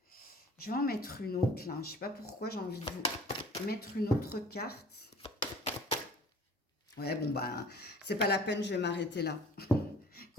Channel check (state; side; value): normal; both; correlation 0.48